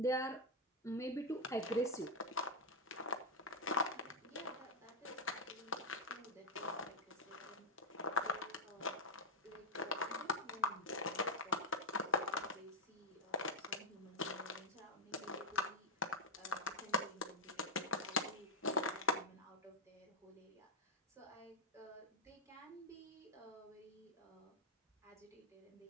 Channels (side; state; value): both; normal; correlation -0.01